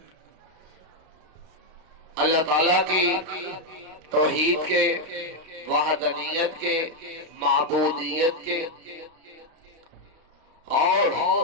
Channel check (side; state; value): left; late; 32 ms